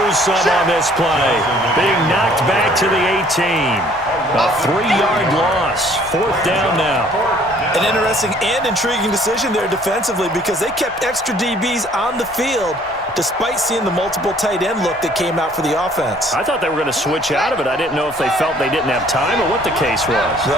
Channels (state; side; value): noise; left; rumble, 26 dB below the sound